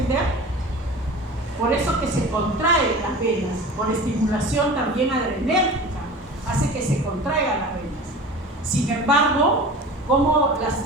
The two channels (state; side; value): normal; both; correlation 0.36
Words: Por eso que se contraen las venas, por estimulación también adrenérgica, hace que se contraigan las venas. Sin embargo, como